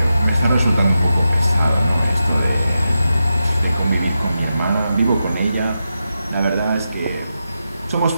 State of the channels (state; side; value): inverted; both; correlation -0.88